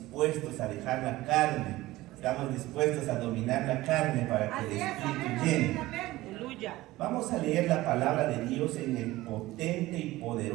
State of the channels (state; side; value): quieter; left; 17.8 dB